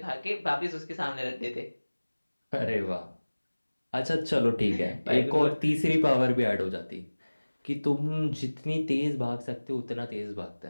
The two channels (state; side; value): inverted; both; correlation -1.00